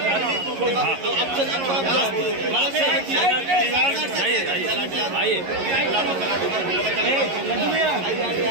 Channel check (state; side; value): late; left; 11 ms